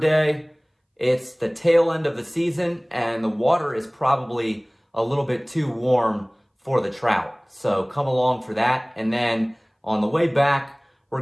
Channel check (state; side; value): identical; both; correlation 1.00